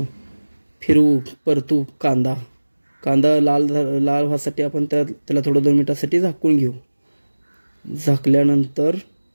फिरवू परतू. कांदा लाल व्हासाठी आपण त्याला थोडं 2 मिनिटासाठी झाकून घेऊ. झाकल्यानंतर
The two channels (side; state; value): both; inverted; correlation -1.00